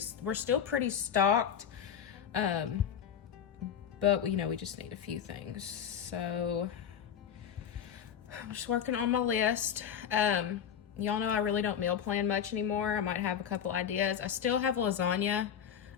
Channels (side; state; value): right; quieter; 8.5 dB